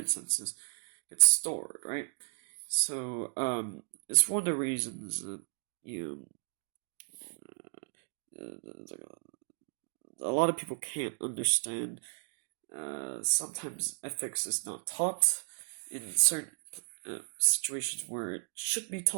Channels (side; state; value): left; silent; digital silence